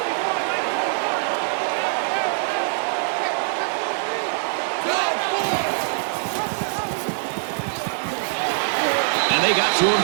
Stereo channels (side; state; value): left; silent; digital silence